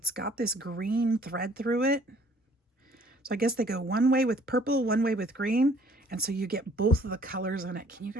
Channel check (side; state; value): both; normal; correlation 0.58